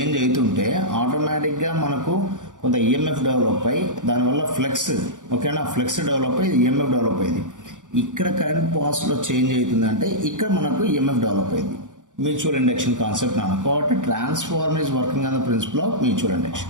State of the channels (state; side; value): late; left; 0.87 ms